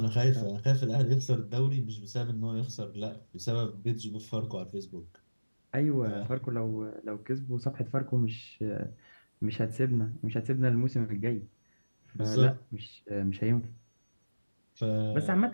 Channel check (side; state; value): both; inverted; correlation -1.00